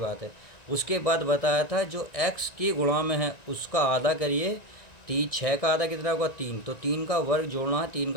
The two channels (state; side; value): late; right; 1.9 ms